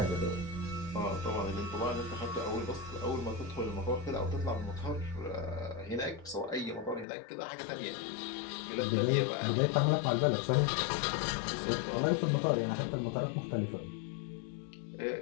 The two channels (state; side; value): drops out; right; at 7.1 s